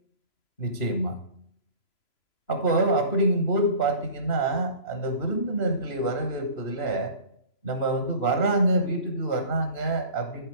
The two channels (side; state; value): right; late; 3.0 ms